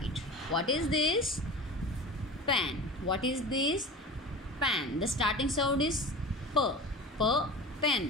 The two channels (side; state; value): both; normal; correlation 0.35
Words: What is this? Pen. What is this? Pen. The starting sound is P. P,